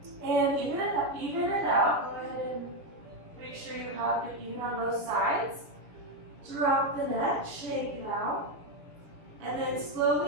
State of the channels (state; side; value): late; left; 6.5 ms